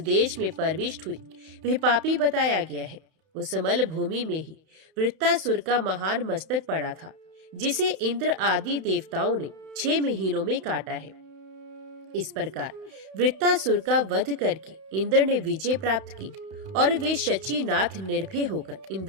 में प्रविष्ट हुई वह पापी बताया गया है। उस मल भूमि में ही वृत्तासुर का महान मस्तक पड़ा था, जिसे इंद्र आदि देवताओं ने 6 महीनों में काटा है। इस प्रकार वृत्तासुर का वध करके इंद्र ने विजय प्राप्त की और वे शचीनाथ निर्भय होकर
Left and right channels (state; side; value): late; left; 31 ms